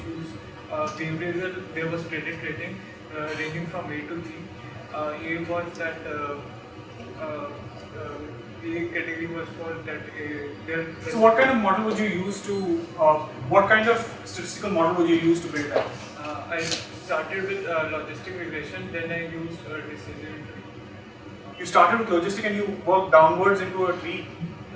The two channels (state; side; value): identical; both; correlation 1.00